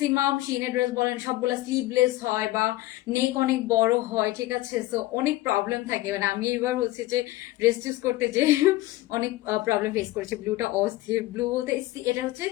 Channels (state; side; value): quieter; right; 17.4 dB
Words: শিনের ড্রেস বলেন সবগুলো স্লিভলেস হয় বা নেক অনেক বড় হয়, ঠিক আছে। সো অনেক প্রবলেম থাকে। মানে আমি এবার হচ্ছে যে ড্রেস চুজ করতে যে অনেক প্রবলেম ফেস করেছি। ব্লুটা অস্থির, ব্লু বলতে এটা হচ্ছে